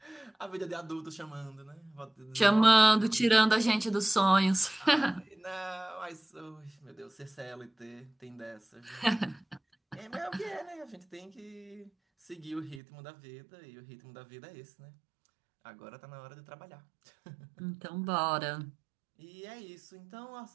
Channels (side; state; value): left; drops out; at 12.8 s